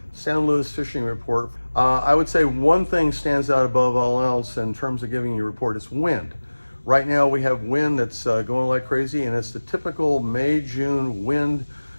San Luis fishing report. I would say one thing stands out above all else in terms of giving you a report is wind. Right now we have wind that's going like crazy, and it's the typical May-June wind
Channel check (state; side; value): inverted; both; correlation -1.00